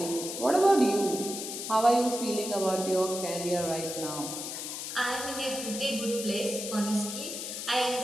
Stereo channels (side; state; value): left; noise; hiss, 6 dB below the sound